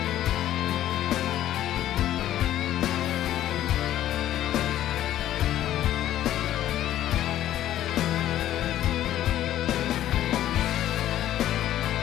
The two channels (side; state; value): right; quieter; 12.6 dB